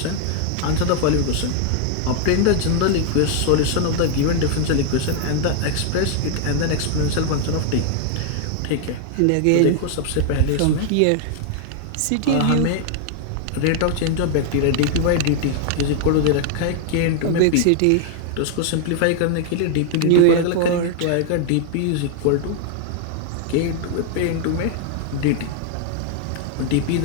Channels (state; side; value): different; both; correlation 0.00